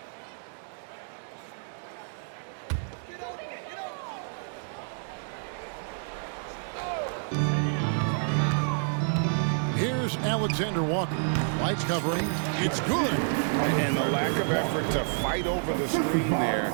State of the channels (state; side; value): silent; left; digital silence